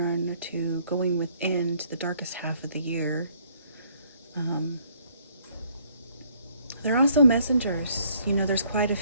to going within to the darkest half of the year. They're also messengers. You know, there's quite a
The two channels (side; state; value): both; inverted; correlation -0.64